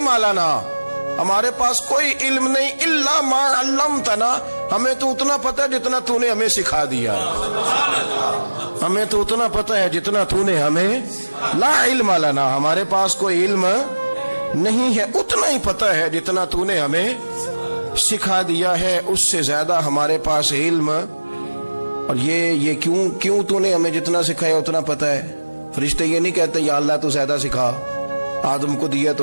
لنا، ہمارے پاس کوئی علم نہیں، الا ما علمتنا، ہمیں تو اتنا پتہ ہے جتنا تو نے ہمیں سکھا دیا ہے، ہمیں تو اتنا پتہ ہے جتنا تو نے ہمیں، لا علم لنا، ہمارے پاس کوئی علم نہیں ہے، اتنا ہی پتہ ہے جتنا تو نے ہمیں سکھا دیا ہے، اس سے زیادہ ہمارے پاس علم۔ اور یہ کیوں تو نے ہمیں جتنا سکھایا اتنا پتہ ہے؟ فرشتے یہ نہیں کہتے یا اللہ تو زیادہ سکھا، آدم کو دیا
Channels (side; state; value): both; inverted; correlation -1.00